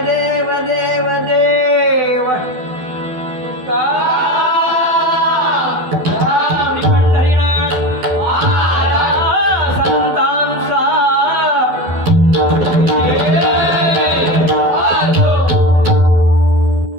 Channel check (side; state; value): left; late; 12 ms